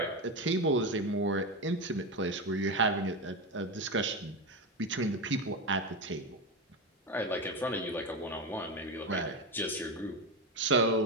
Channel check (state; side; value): normal; both; correlation 0.16